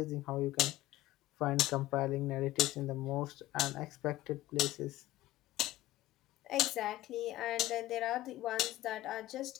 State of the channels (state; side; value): quieter; right; 15.5 dB